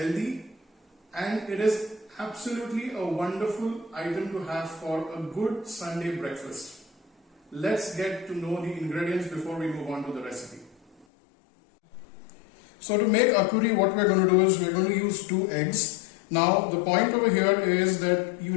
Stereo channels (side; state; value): right; drops out; at 11.1 s